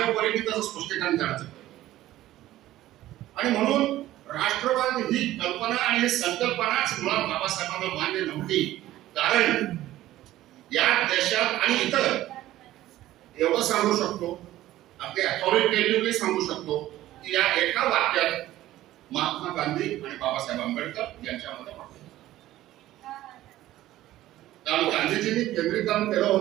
परीने त्याचं स्पष्टीकरण करायचं. आणि म्हणून राष्ट्रवाद ही कल्पना आणि ही संकल्पनाच मुळात बाबासाहेबांना मान्य नव्हती. कारण या देशात आणि इतर एवढं सांगू शकतो, अगदी अथॉरिटेटिव्हली सांगू शकतो की या एका वाक्यात महात्मा गांधी आणि बाबासाहेब आंबेडकर यांच्यामध्ये कारण गांधीजींनी केंद्रीकरण केलं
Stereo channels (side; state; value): left; quieter; 14.9 dB